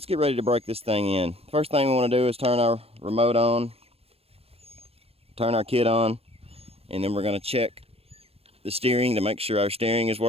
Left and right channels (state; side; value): late; left; 0.29 ms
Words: get ready to break this thing in. First thing we want to do is turn our remote on, turn our kit on, and then we're going to check the steering to make sure our steering is